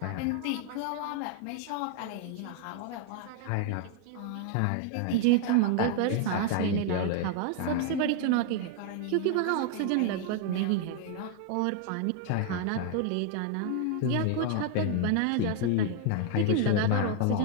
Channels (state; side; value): different; both; correlation 0.00